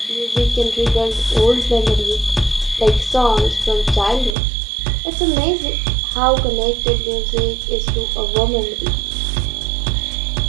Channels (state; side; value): drops out; left; at 4.4 s